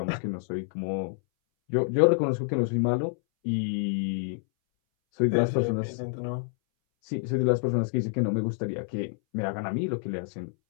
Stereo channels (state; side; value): silent; right; 60 dB below the other